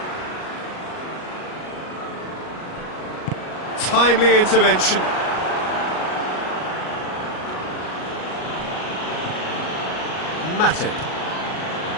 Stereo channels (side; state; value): right; late; 38 ms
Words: Timely intervention. Matip.